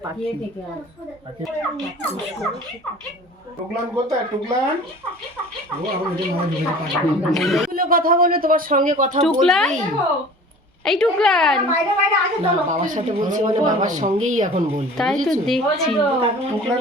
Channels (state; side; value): normal; both; correlation 0.43